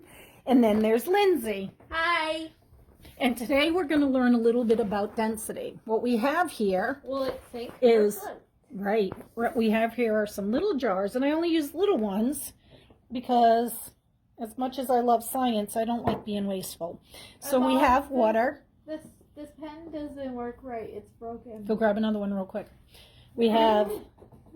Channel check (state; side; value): identical; both; correlation 1.00